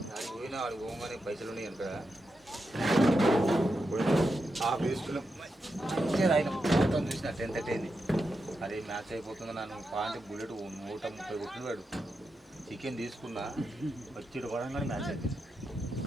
అది పోయినా వాడు పోగానే పైసలు ఉన్నాయి అనుకో ఆ బేస్లో మంచిగా ఆయన మొత్తం చూసిన 10:30 అయింది. అదే మ్యాచ్ అయిపోతుంది నన్ను పాయింట్ బుల్లెట్ 130 కొట్టినాడు. చికెన్ తీసుకున్నా వచ్చి పడంగానే మ్యాచ్ అయిపోయింది.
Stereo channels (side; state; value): both; normal; correlation 0.87